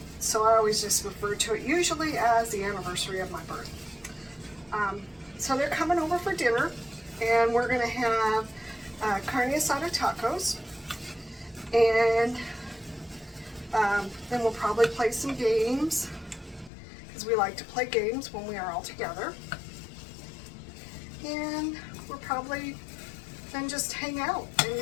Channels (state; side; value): drops out; right; at 16.7 s